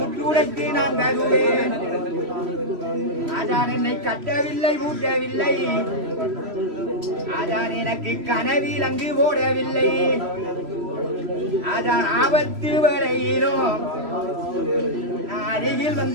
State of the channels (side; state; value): left; late; 3.0 ms